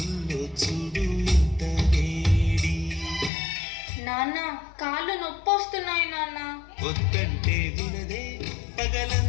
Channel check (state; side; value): drops out; right; at 3.3 s